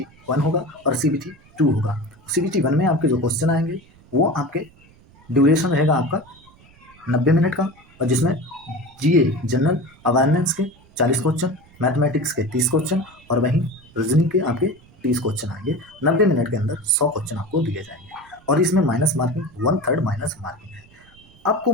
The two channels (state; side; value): noise; right; rumble, 27 dB below the sound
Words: 1 होगा और CBT 2 होगा। CBT 1 में आपके जो क्वेश्चन आएंगे वो आपके ड्यूरेशन रहेगा आपका 90 मिनट का, और जिसमें GA जनरल अवेयरनेस के 40 क्वेश्चन, मैथमेटिक्स के 30 क्वेश्चन और वहीं रीजनिंग के आपके 30 क्वेश्चन आएंगे। 90 मिनट के अंदर 100 क्वेश्चन आपको दिए जाएंगे और इसमें माइनस मार्किंग 1/3 माइनस मार्किंग है। आपको